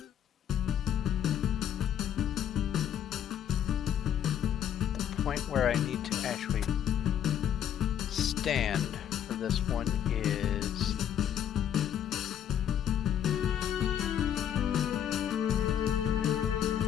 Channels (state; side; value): quieter; right; 9.6 dB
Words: the point where I need to actually stand for this one is